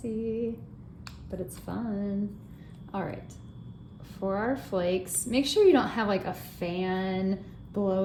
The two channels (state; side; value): identical; both; correlation 1.00